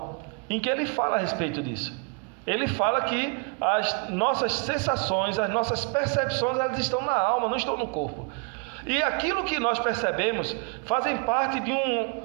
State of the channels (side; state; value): left; quieter; 35.0 dB